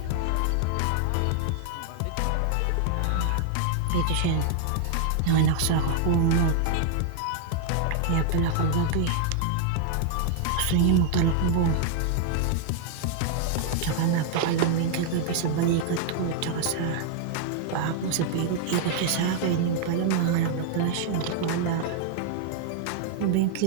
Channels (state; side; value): different; both; correlation 0.00